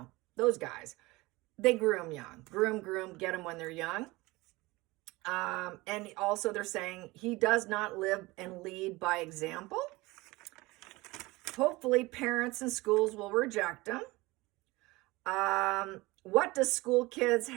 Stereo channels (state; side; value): quieter; left; 21.7 dB